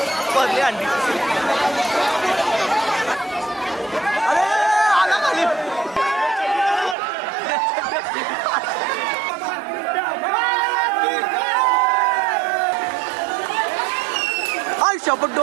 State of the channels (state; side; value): drops out; left; at 7.0 s